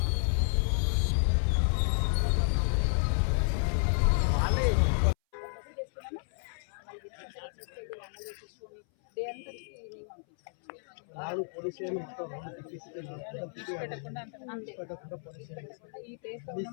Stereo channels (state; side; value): silent; right; 57 dB below the other